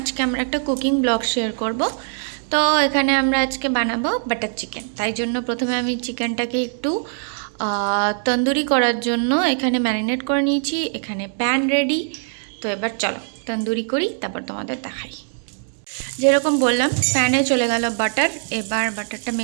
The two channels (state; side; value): silent; left; 65 dB below the other